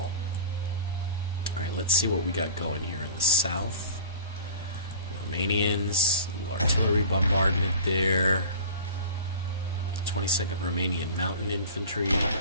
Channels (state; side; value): inverted; both; correlation -0.39